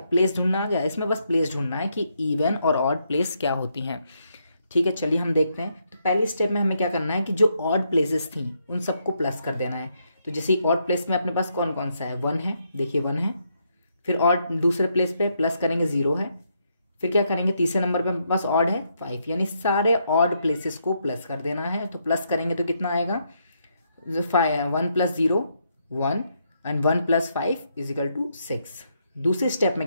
प्लेस ढूंढना आ गया। इसमें बस प्लेस ढूंढना है कि इवन और ऑड प्लेस क्या होती हैं। ठीक है, चलिए हम देखते हैं। तो पहली स्टेप में हमें क्या करना है कि जो ऑड प्लेसेस थी उन सबको प्लस कर देना है। तो जैसे ऑड प्लेस में अपने पास कौन कौन सा है? 1 है, देखिए 1 है। फिर ऑड दूसरे प्लेस पे प्लस करेंगे 0 है। फिर क्या करेंगे? तीसरे नंबर पे अपने पास ऑड है 5, यानी सारे ऑड प्लेसेस को प्लस कर देना है। तो प्लस करेंगे तो कितना आएगा? 1 + 0 1 एंड 1 + 5 = 6। दूसरी स्टेप में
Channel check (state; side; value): inverted; both; correlation -0.77